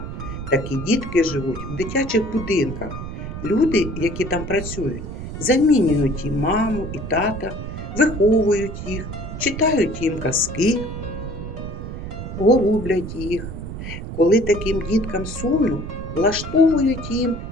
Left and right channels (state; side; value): noise; right; rumble, 8 dB below the sound